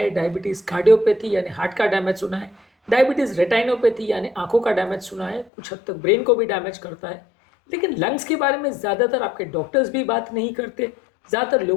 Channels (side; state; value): right; drops out; at 5.5 s